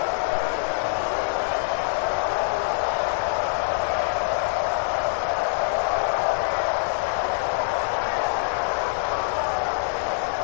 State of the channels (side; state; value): right; silent; digital silence